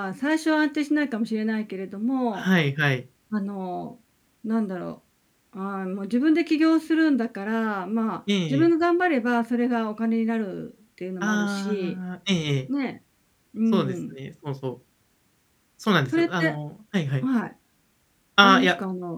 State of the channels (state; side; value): identical; both; correlation 1.00